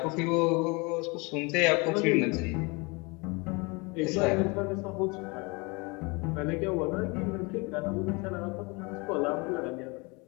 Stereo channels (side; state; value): right; quieter; 28.2 dB